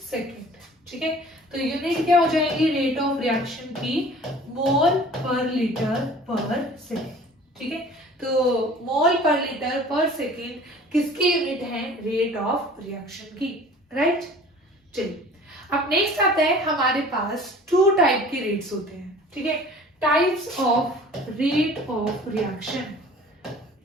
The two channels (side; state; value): both; normal; correlation 0.46